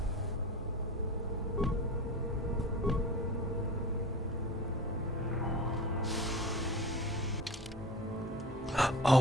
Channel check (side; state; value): both; normal; correlation 0.33